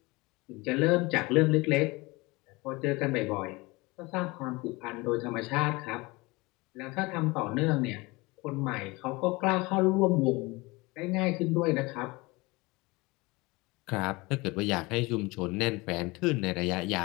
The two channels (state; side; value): quieter; right; 23.8 dB